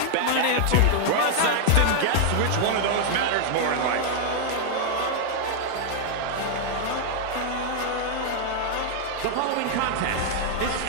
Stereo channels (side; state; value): both; different; correlation 0.00